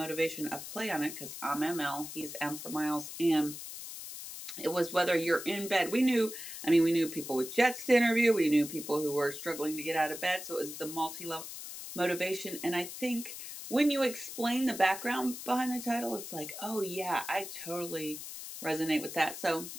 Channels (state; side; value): noise; left; hiss, 10 dB below the sound